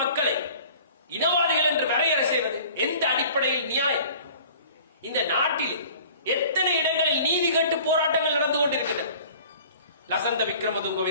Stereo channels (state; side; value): inverted; both; correlation -0.47